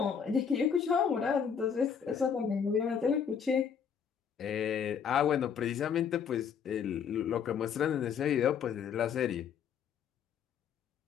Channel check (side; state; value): right; quieter; 7.3 dB